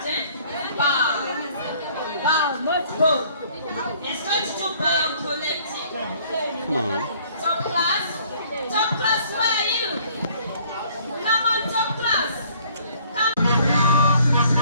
eh? Bow. Bow, not go. It's going to do bow collecting. Come on. Top class? Top class, where are you? Come on, top class. Come.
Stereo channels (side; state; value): both; inverted; correlation -0.58